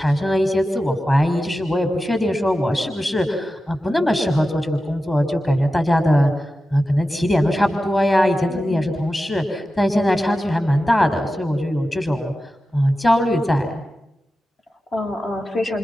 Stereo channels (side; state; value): both; normal; correlation 0.93